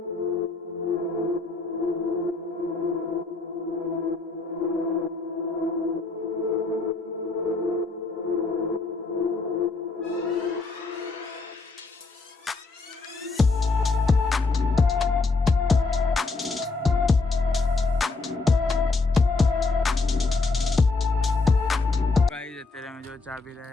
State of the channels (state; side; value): quieter; right; 3.8 dB